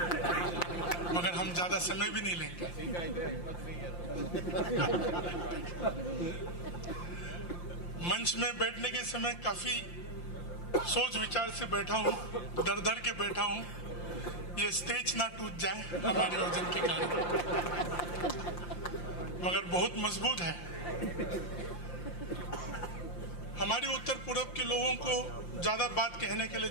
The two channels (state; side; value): late; right; 5.8 ms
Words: मगर हम ज्यादा समय भी नहीं लेंगे। मंच में बैठने के समय काफी सोच विचार से बैठा हूं, डर डर के बैठा हूं, ये स्टेज ना टूट जाए हमारे वजन के कारण, मगर बहुत मजबूत है। हमारी उत्तर पूर्व के लोगों को ज्यादा बात कहने के लिए